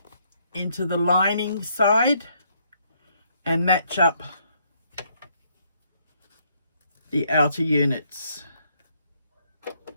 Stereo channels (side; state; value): both; inverted; correlation -0.70